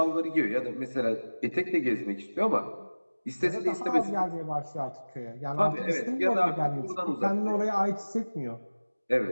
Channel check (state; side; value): inverted; both; correlation -1.00